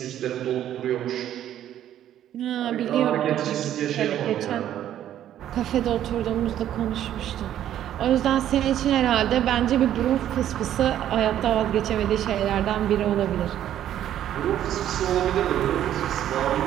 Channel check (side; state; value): left; quieter; 11.4 dB